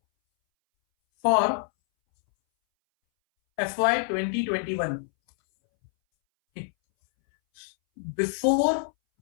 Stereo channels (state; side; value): silent; right; 61 dB below the other